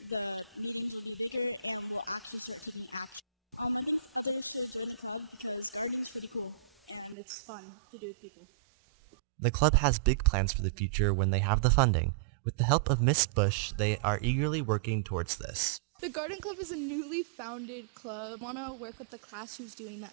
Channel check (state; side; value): drops out; left; at 7.2 s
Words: The club has big plans for the future when they have the funding. With the help of Miss Bush, they are eagerly working towards this.